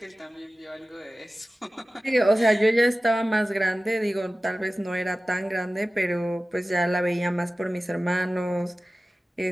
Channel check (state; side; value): normal; both; correlation 0.96